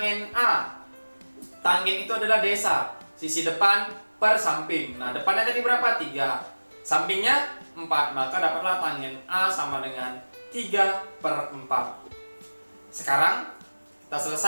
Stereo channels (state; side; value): inverted; both; correlation -1.00